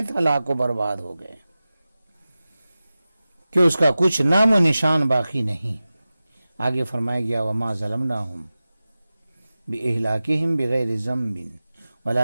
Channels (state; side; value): inverted; both; correlation -0.95